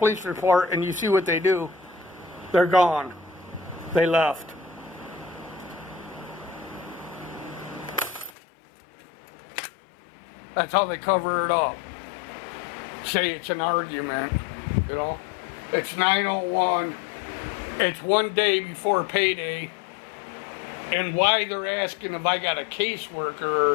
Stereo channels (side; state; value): right; drops out; at 8.3 s